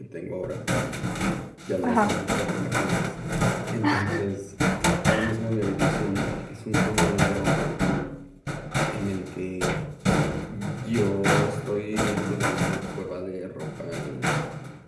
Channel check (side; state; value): both; identical; correlation 1.00